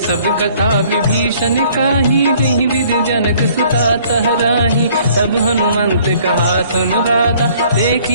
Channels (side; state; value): both; inverted; correlation -0.58